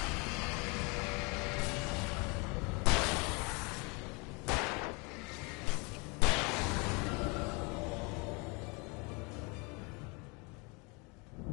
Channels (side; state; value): right; quieter; 30.1 dB